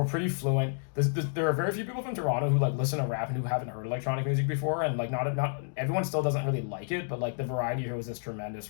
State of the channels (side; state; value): right; silent; digital silence